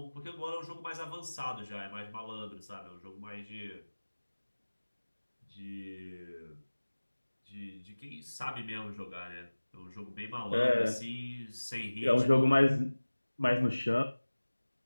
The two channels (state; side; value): inverted; both; correlation -1.00